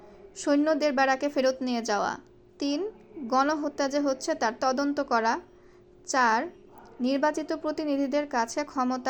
সৈন্যদের ব্যারাকে ফেরত নিয়ে যাওয়া। 3. গণহত্যা যে হচ্ছে তার তদন্ত করা। 4. নির্বাচিত প্রতিনিধিদের কাছে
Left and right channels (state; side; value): identical; both; correlation 1.00